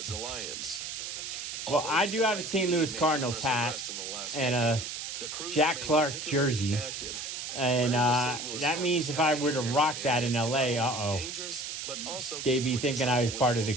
Alliance. Well, I do have a St. Louis Cardinals hat and a Jack Clark jersey. And that means if I were to rock that in LA, they'd be thinking I was part of the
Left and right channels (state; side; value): noise; right; hiss, 6 dB below the sound